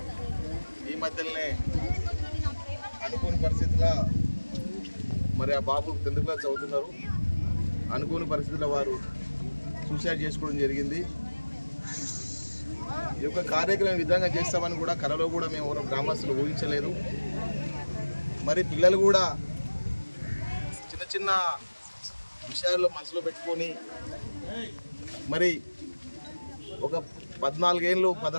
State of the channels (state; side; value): inverted; both; correlation -1.00